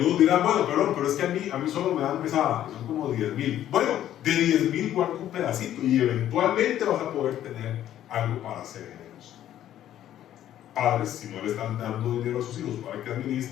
dirán: bueno, perdón, pero es que a mí solo me dan pesada, son como 10,000. Bueno, de 10,000 guarda un pedacito y eventualmente vas a poder tener algo para ser generoso. Padres, si no le están dando dinero a sus hijos para que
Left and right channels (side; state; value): right; quieter; 11.8 dB